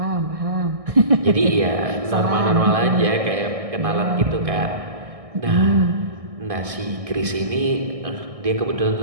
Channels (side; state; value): left; late; 1.6 ms